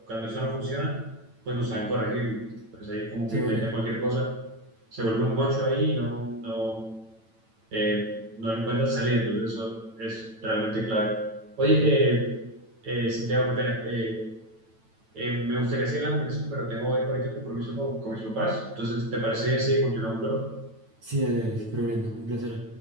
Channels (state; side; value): late; left; 9.0 ms